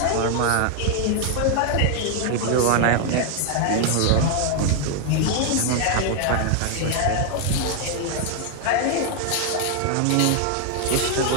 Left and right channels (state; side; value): different; both; correlation 0.00